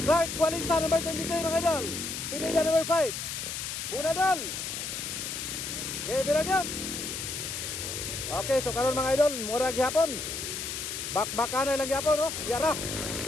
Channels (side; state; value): left; noise; hiss, 5 dB below the sound